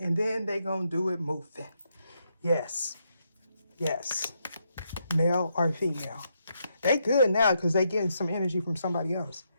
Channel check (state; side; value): inverted; both; correlation -0.79